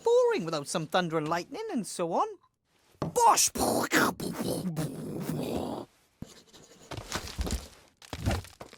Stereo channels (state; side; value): identical; both; correlation 1.00